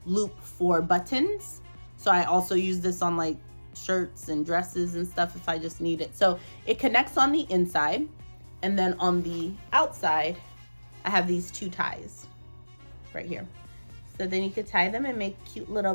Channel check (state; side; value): inverted; both; correlation -1.00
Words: loop for buttons. So I also use this on like shirts and dresses and stuff if I just need it. So it connects on the inside, and then on the outside I have these 2 ties right here. So then you could tie them and make cute little